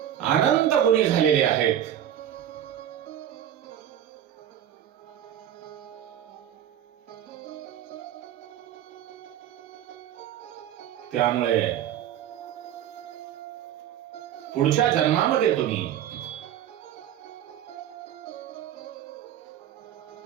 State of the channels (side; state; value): left; quieter; 10.7 dB